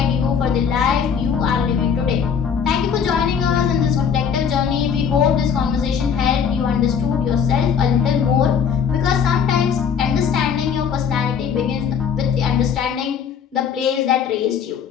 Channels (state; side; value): quieter; right; 7.1 dB